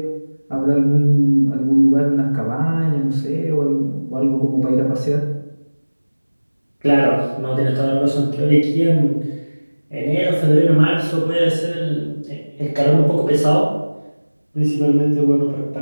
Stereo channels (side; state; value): both; inverted; correlation -1.00